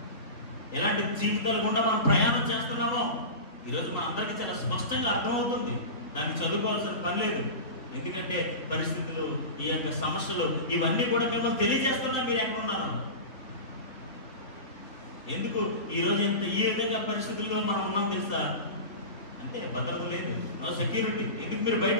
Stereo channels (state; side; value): late; right; 3.7 ms